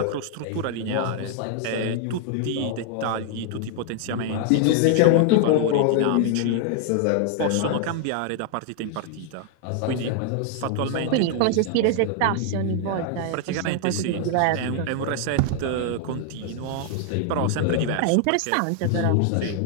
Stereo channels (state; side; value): different; both; correlation 0.00